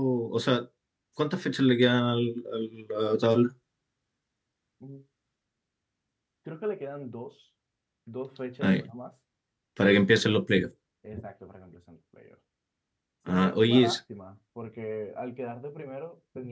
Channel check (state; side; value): identical; both; correlation 1.00